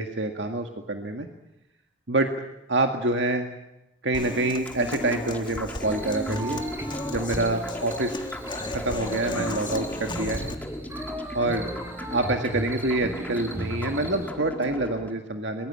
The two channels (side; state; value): both; normal; correlation 0.12